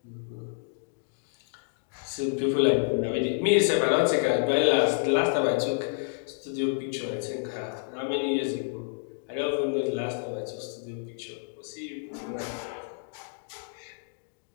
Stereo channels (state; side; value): silent; right; digital silence